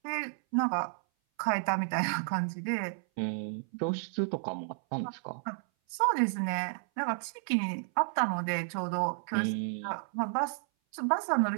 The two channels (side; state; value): left; silent; 56 dB below the other